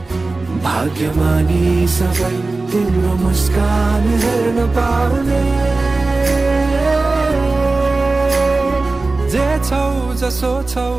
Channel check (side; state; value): left; quieter; 3.4 dB